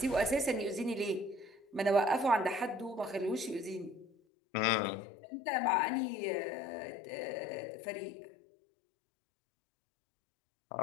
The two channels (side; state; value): right; drops out; at 4.1 s